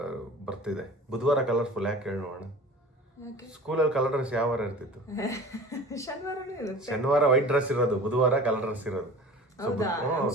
ಬರ್ತಿದೆ. ಬುಧವಾರ ಕಲರ್ಫುಲ್ ಯಾಕೆ ಹೇಳಿ ನೋಡೋಣ. ಸ್ಕೂಲಲ್ಲಿ ಕಲರ್ ಡ್ರೆಸ್ ಯಾವ ವಾರ ಇರ್ತಿತ್ತು? ಶನಿವಾರ ವೈಟ್ ಡ್ರೆಸ್ ಇರೋದು, ಬುಧವಾರ ಕಲರ್ ಡ್ರೆಸ್ ಇರೋದು.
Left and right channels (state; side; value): normal; both; correlation 0.40